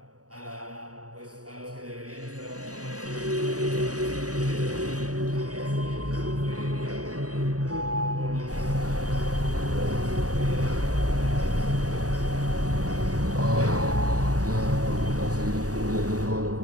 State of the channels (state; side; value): late; left; 0.67 ms